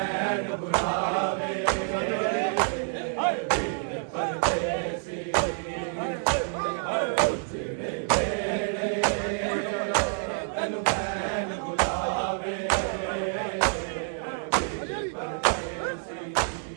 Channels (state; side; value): silent; left; 59 dB below the other